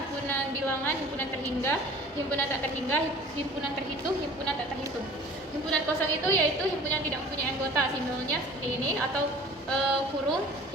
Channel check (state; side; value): normal; both; correlation 0.46